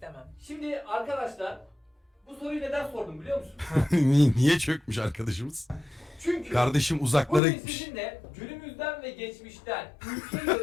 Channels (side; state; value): right; drops out; at 7.4 s